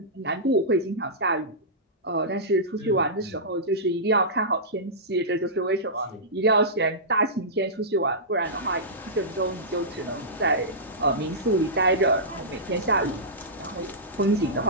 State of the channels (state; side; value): normal; both; correlation -0.16